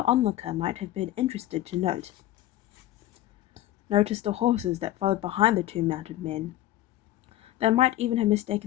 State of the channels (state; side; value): quieter; right; 14.2 dB